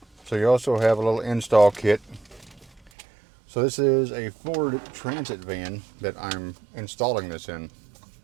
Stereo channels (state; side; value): drops out; left; at 2.9 s